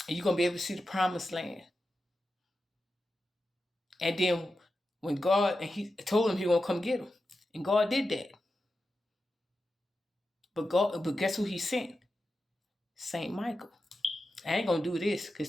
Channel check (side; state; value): both; normal; correlation 0.91